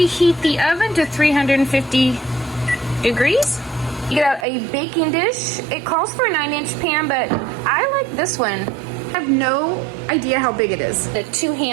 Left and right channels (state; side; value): drops out; left; at 4.5 s